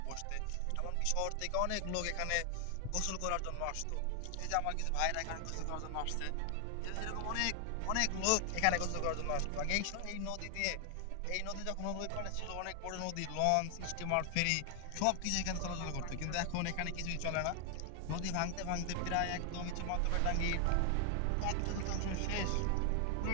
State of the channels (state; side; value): different; both; correlation 0.00